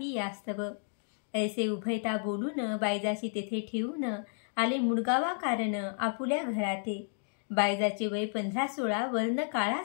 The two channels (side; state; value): right; silent; 57 dB below the other